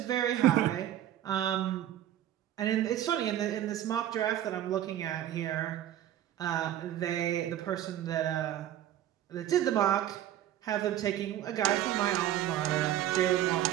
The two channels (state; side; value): quieter; left; 12.0 dB